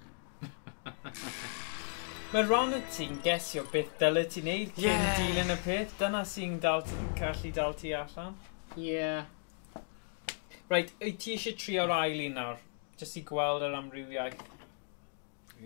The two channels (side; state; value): right; silent; digital silence